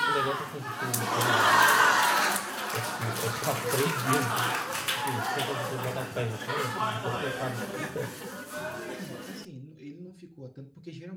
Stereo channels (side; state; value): both; identical; correlation 1.00